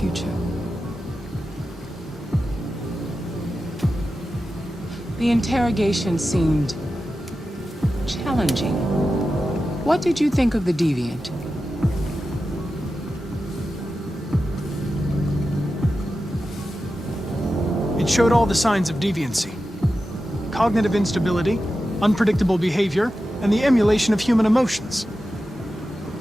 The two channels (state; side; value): normal; both; correlation 0.92